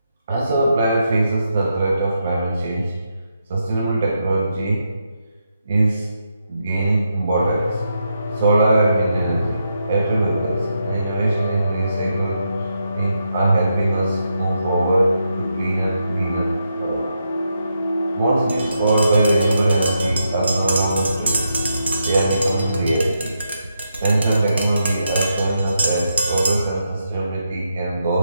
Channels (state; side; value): inverted; both; correlation -0.83